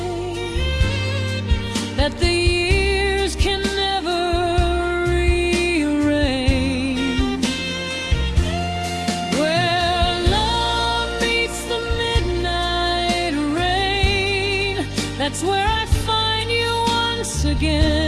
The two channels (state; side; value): identical; both; correlation 1.00